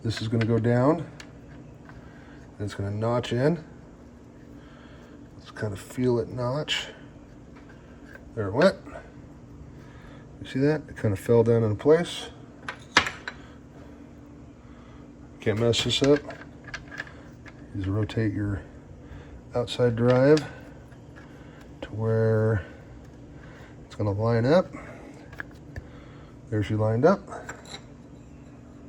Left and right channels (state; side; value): identical; both; correlation 1.00